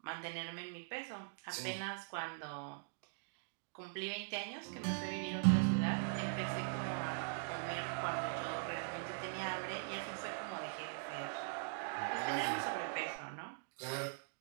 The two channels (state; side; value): silent; left; digital silence